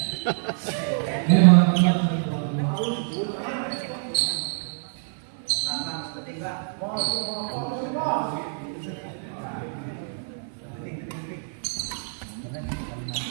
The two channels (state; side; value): silent; left; digital silence